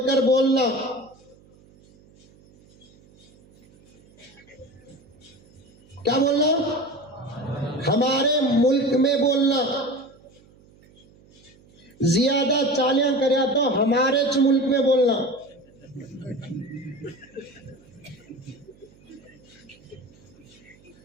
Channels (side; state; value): right; noise; hum, 28 dB below the sound